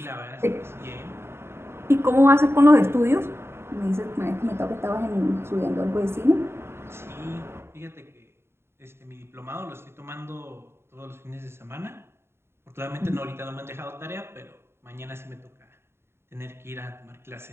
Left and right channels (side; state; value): left; late; 0.12 ms